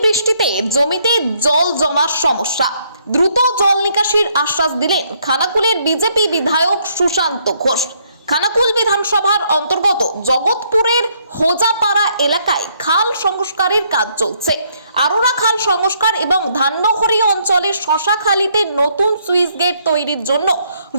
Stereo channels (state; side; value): inverted; both; correlation -0.70